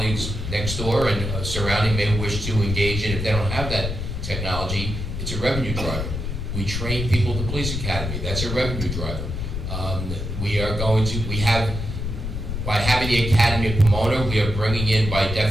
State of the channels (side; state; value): left; noise; rumble, 4 dB below the sound